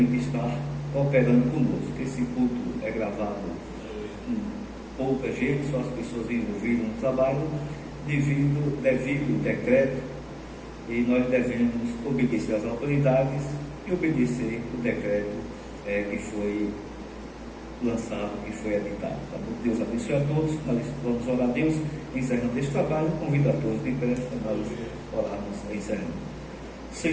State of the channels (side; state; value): both; identical; correlation 1.00